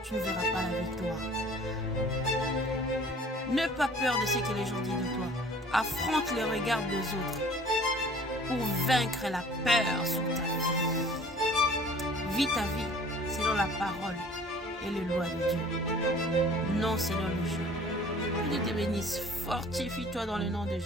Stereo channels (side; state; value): both; normal; correlation 0.50